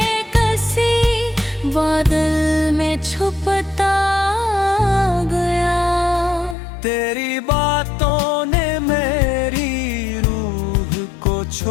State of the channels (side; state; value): right; drops out; at 6.6 s